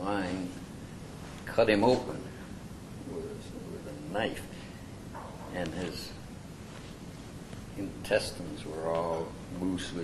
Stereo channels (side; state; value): both; identical; correlation 1.00